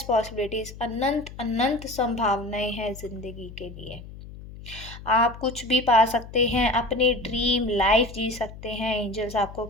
पॉसिबिलिटीज़, अनंत अनंत संभावनाएं हैं ज़िंदगी के लिए। आप कुछ भी पा सकते हैं, अपनी ड्रीम लाइफ जी सकते हैं। एंजल्स आपको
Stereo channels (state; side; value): noise; left; hum, 15 dB below the sound